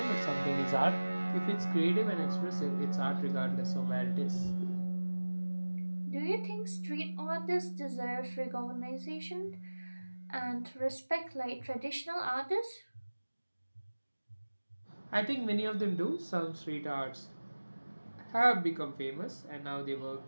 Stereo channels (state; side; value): inverted; both; correlation -1.00